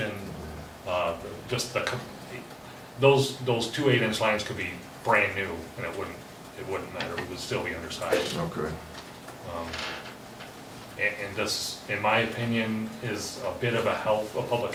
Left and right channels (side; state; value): both; identical; correlation 1.00